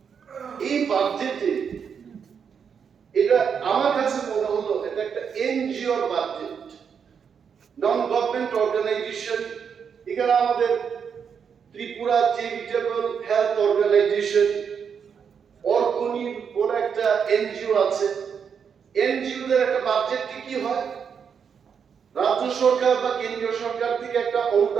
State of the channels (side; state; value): left; quieter; 6.9 dB